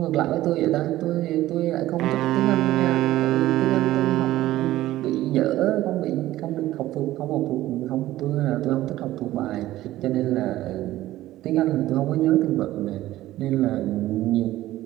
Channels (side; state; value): left; quieter; 15.3 dB